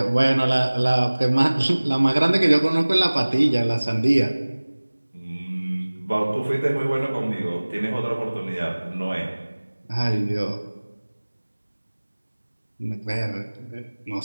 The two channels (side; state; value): both; inverted; correlation -1.00